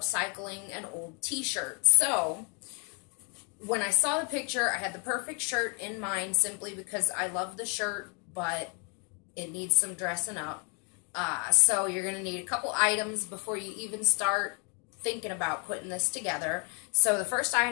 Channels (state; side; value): quieter; right; 36.8 dB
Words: an old t-shirt. So when I saw the picture, I had the perfect shirt in mind simply because I love the shirt, but it needs some dressing up. So you're going to need a couple items before you even start thinking about putting this together. So the first